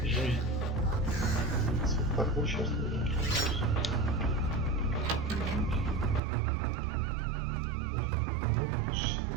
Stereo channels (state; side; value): drops out; left; at 6.2 s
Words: жизнь. Так, ну сейчас. Ну,